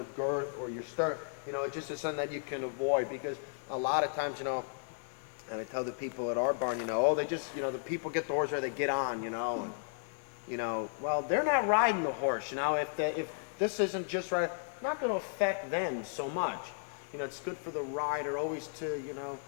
girth or your stirrup, you know, it just is something that you can avoid, because a lot of times, you know, and I tell the people at our barn, you know, oh, they just, you know, the people get the horse or they get on, you know, and, you know, well, they're not riding the horse, you know, if this isn't just right, it's not going to affect them so much. You know, it's good for the rider always to, you know,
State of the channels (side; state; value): right; silent; 55 dB below the other